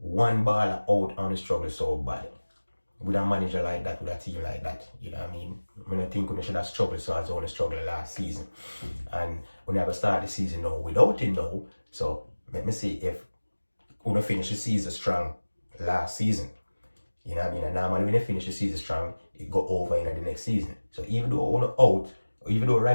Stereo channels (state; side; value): inverted; both; correlation -1.00